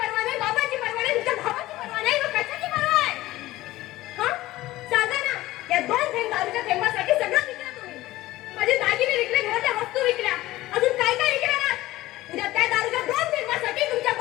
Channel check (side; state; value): right; quieter; 17.0 dB